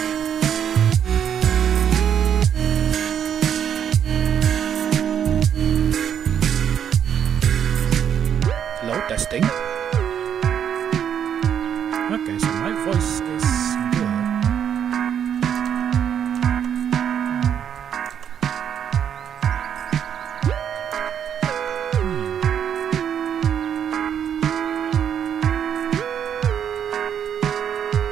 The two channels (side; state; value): left; quieter; 8.7 dB